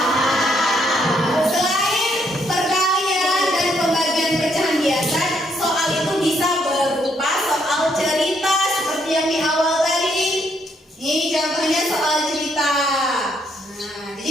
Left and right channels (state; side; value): normal; both; correlation 0.72